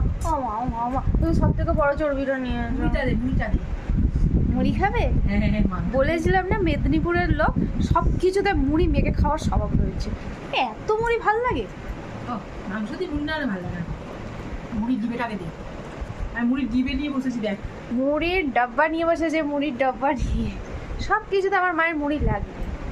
ও মা, ও মা, ও মা, তুমি সব থেকে বড় চর্বিটা নিয়ে এসো। মুড়িটা দে। মুড়ি খাবে? বলেছিলাম না মেদিনীপুরের লোক সব কিছুতে মুড়ি মেখে খাওয়ার স্বভাব রয়েছে। এত মুড়ি ভাল লাগে? মাংস দিয়ে মুড়ি না হলে ভালো লাগে না। মুড়ির ডিবেটাকে দে। আমি মুড়ির ডিবে নিয়ে বসেছি দেখ। মুড়ির ডাব্বা নিয়ে বসেছে, মুড়ির ডাব্বা নিয়ে। সব কিছুতে আমার মায়ের মুড়ি লাগবে।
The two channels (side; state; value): both; identical; correlation 1.00